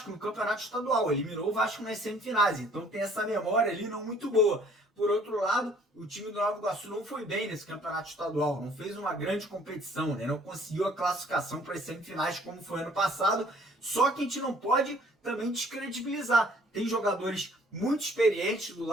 no Campeonato Estadual, eliminou o Vasco nas semifinais, então tem essa memória ali não muito boa. Por outro lado, o time do Nova Iguaçu não foi bem nesse Campeonato Estadual, não fez uma grande competição, né? Não conseguiu a classificação para as semifinais como foi ano passado, só que a gente não pode também descredibilizar. Tem jogadores muito experientes do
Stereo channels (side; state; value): both; normal; correlation 0.58